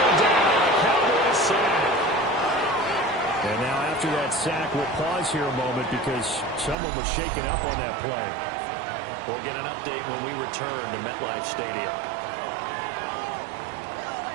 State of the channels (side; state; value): left; drops out; at 6.8 s